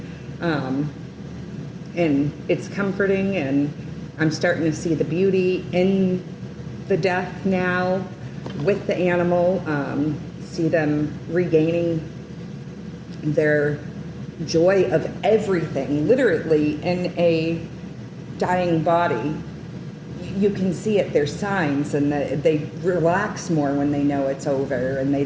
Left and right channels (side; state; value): both; identical; correlation 1.00